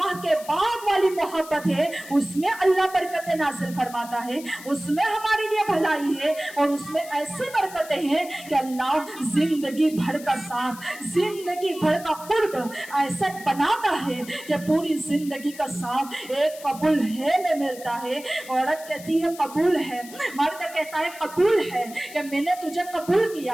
के बाद वाली मोहब्बत है, उसमें अल्लाह बरकतें नाज़िल फरमाता है, उसमें हमारे लिए भलाई है, और उसमें ऐसी बरकतें हैं कि अल्लाह जिंदगी भर का साथ, जिंदगी भर का कुर्ब ऐसा बनाता है कि पूरी जिंदगी का साथ एक कबूल है में मिलता है। औरत कहती है कबूल है, मर्द कहता है कबूल है, कि मैंने तुझे कबूल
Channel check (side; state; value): left; noise; hiss, 17 dB below the sound